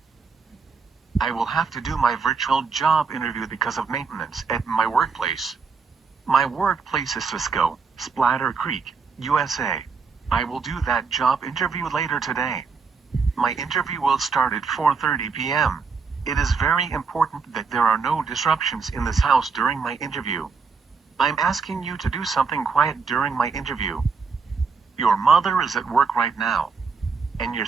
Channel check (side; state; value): left; quieter; 5.1 dB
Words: I will have to do my virtual job interview because of maintenance at my workplace. My workplace is Cisco, Splatter Creek, USA. I will do that job interview later today. My interview will start at 4:30 p.m. It is very important that there are no disruptions in this house during my interview. I'm asking you to do something quiet during my interview. Your mother is at work right now. And